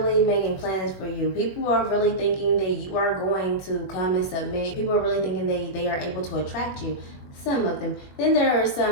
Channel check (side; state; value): right; late; 21 ms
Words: making plans for you. People are really thinking that you are going to come and submit. People are really thinking they are able to attract you. Some of them. Then there are